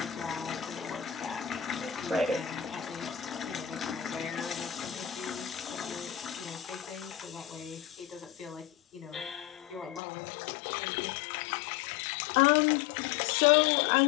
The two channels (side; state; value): right; drops out; at 10.0 s